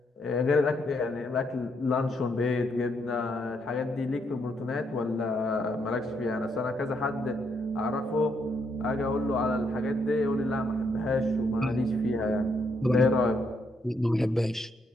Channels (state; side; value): normal; both; correlation 0.75